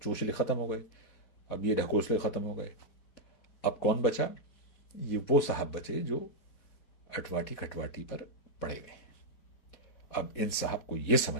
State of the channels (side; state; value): right; late; 4.2 ms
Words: چوچلے ختم ہو گئے، اب یہ ڈھکوسلے ختم ہو گئے۔ اب کون بچا؟ یہ وہ صاحب بچے جو اٹواٹی کھٹواٹی پر پڑے گئے ہیں۔ اب ان صاحب کو یہ